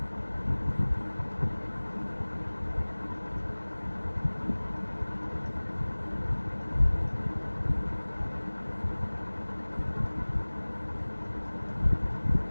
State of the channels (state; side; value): inverted; both; correlation -1.00